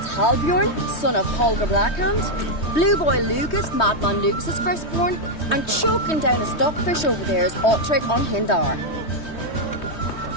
Halbjorn, son of Holger Blackhand. Blue Boy Lucas, Madman Lucas's firstborn. And choking down a stockfish over there is Ottric on Hindar.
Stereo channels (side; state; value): right; late; 3.2 ms